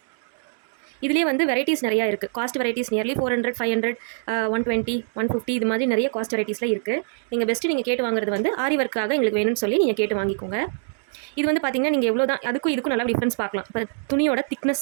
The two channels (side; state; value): left; silent; digital silence